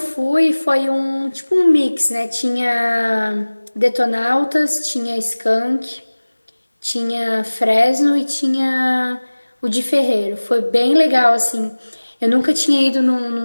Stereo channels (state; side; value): inverted; both; correlation -1.00